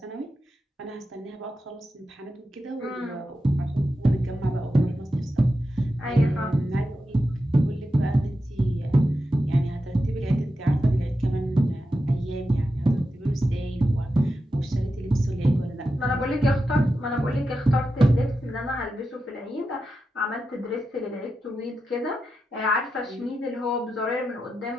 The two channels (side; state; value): both; normal; correlation 0.89